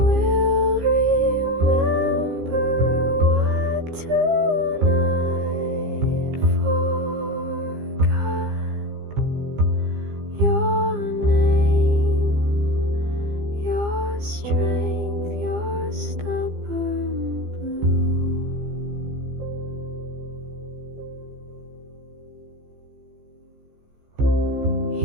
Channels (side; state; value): left; late; 15 ms